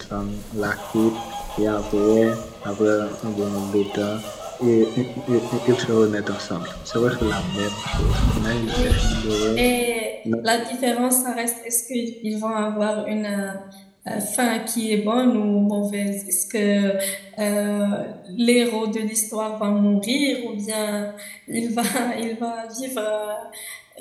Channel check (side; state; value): both; identical; correlation 1.00